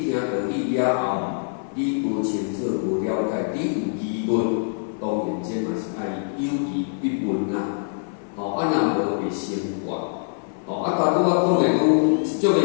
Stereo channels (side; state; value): right; silent; 56 dB below the other